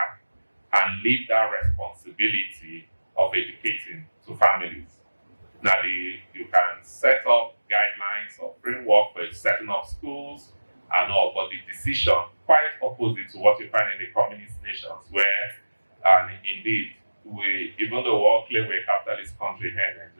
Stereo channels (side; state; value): both; inverted; correlation -1.00